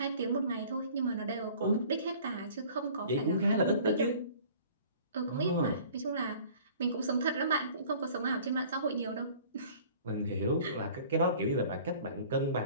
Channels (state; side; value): inverted; both; correlation -0.49